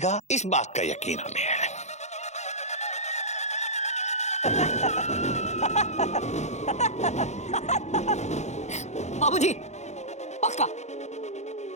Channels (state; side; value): late; right; 0.33 ms